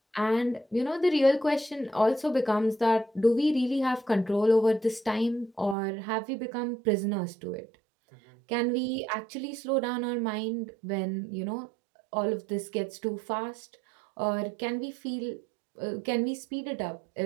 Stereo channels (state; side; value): drops out; left; at 5.8 s